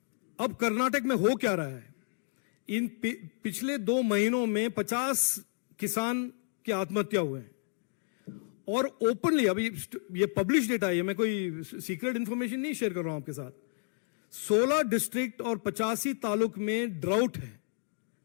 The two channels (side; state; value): right; silent; digital silence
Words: अब कर्नाटक में हो क्या रहा है, इन पिछले 2 महीनों में 50 किसान की आत्महत्या हुए हैं और ओपनली, अभी ये पब्लिश डेटा है, मैं कोई सीक्रेट इंफॉर्मेशन नहीं शेयर कर रहा हूं आपके साथ. 16 डिस्ट्रिक्ट और 85 तालुक में ड्राउट है.